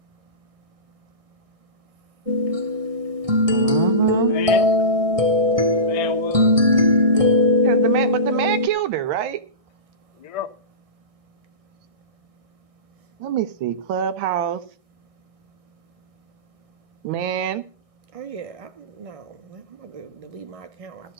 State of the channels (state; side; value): late; left; 1.6 ms